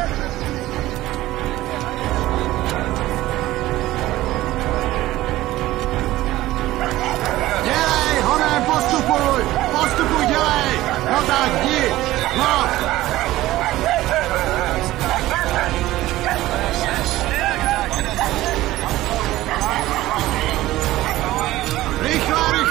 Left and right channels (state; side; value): quieter; left; 16.3 dB